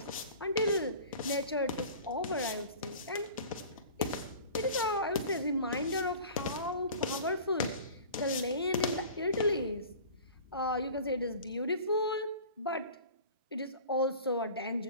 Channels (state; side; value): inverted; both; correlation -0.41